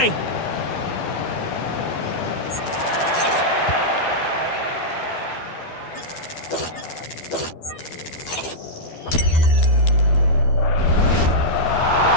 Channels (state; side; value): late; right; 12 ms